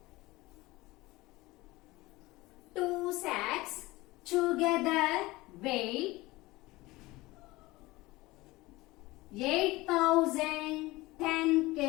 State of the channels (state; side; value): quieter; right; 20.3 dB